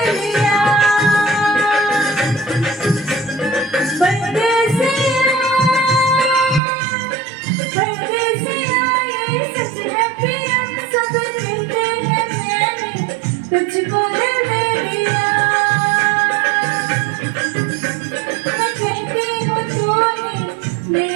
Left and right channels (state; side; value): drops out; left; at 6.6 s